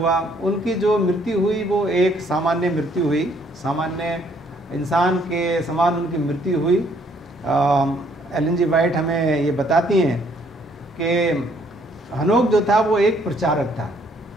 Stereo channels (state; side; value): normal; both; correlation 0.66